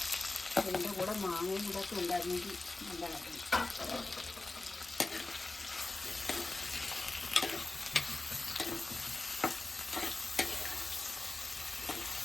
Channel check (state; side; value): quieter; right; 3.1 dB